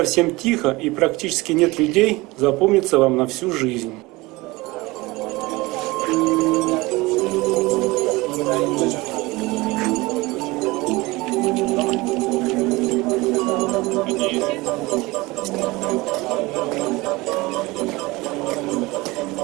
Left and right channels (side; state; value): left; quieter; 22.0 dB